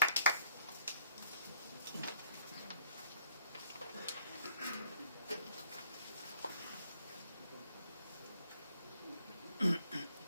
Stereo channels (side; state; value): both; inverted; correlation -0.65